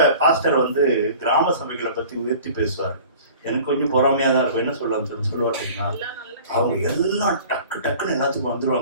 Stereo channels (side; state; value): both; inverted; correlation -0.45